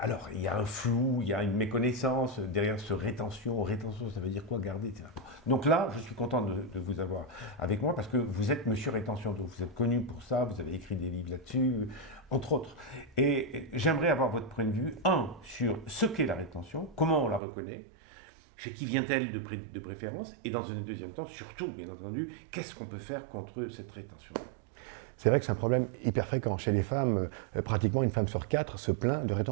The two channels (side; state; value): left; drops out; at 17.4 s